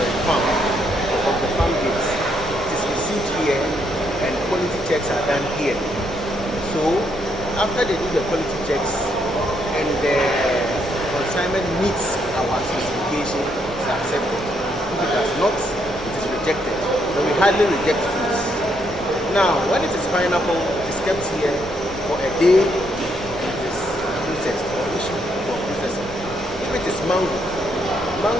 farm gates, it is received here and quality checks are done here. So after they do the quality checks and the consignment meets our specification, it is accepted. If it does not, it is rejected. But we hardly reject foods. Now, when it is pineapple, it is kept here for a day. Or issue for processing. If it is mango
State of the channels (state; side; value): normal; both; correlation 0.74